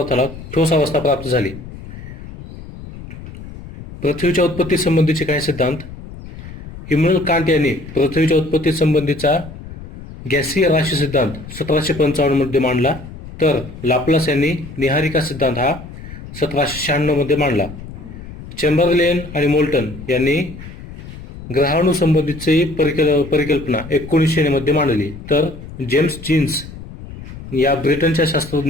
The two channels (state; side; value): noise; left; rumble, 14 dB below the sound